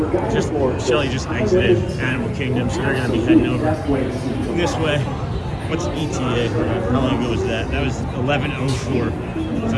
Shelly just exited Animal Kingdom, so they're gonna be heading over this way. What's ETA? How long ago was that? That was 11:04. So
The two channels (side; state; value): both; identical; correlation 1.00